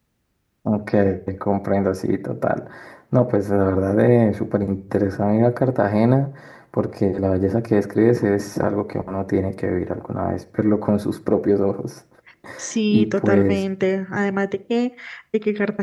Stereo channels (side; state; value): both; identical; correlation 1.00